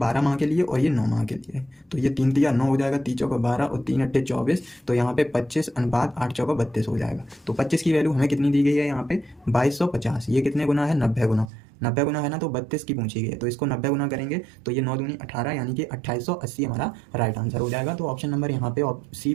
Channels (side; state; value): left; drops out; at 11.5 s